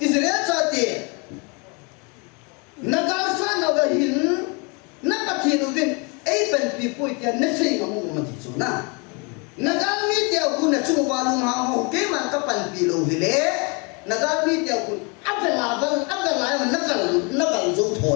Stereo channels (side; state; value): right; quieter; 31.7 dB